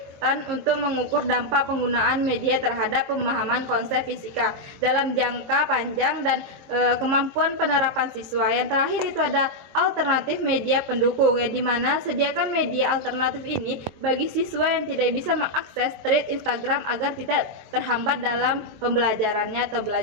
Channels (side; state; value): left; late; 23 ms